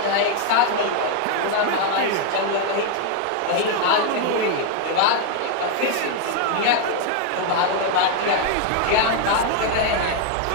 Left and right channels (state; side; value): different; both; correlation 0.01